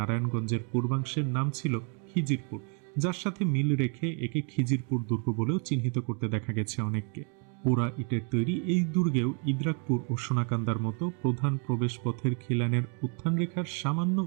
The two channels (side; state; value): left; quieter; 37.0 dB